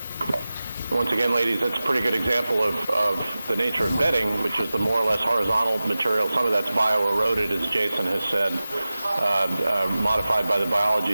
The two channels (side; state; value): both; inverted; correlation -0.95